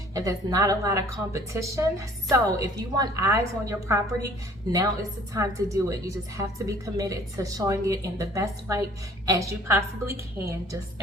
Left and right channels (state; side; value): normal; both; correlation 0.53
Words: and there's not a lot of competition. So if you want eyes on your property, now is the time to do it. You just have to be committed to showing it in the best light as you possibly can, just